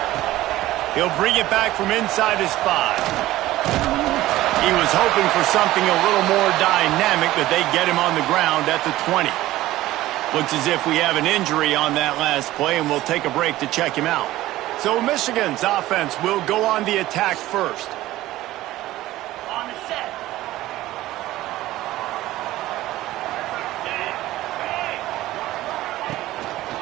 He'll bring it back from inside his 5. He was hoping for something a little more dynamic, but they get him on the ground at the 20. Looks as if we have an injury on that last play, and we'll take a break to check him out. So Michigan's offense will go on the attack first. On the set.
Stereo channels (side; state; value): left; quieter; 16.0 dB